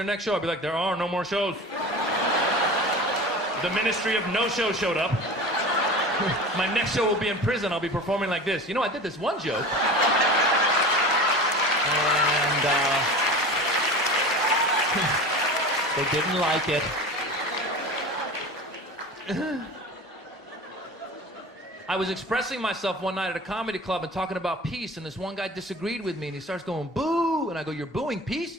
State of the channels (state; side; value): normal; both; correlation 0.34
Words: next show? I'd be like, there are no more shows. The Ministry of No-Show showed up. My next show will be in prison. I'll be performing like this. You know, I did this one joke. And, they didn't like it. I was expressing myself one night at a comedy club and talking about peace, and this one guy disagreed with me, and he starts going, boo! And I go, you're booing peace?